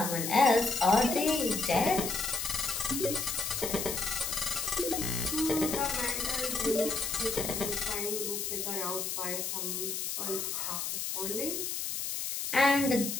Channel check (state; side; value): noise; left; hiss, 3 dB below the sound